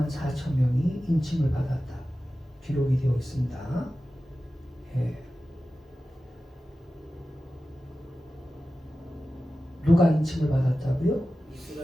4천 명이 인침을 받았다. 기록이 되어 있습니다. 예. 누가 인침을 받았다고요?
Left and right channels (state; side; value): normal; both; correlation 0.94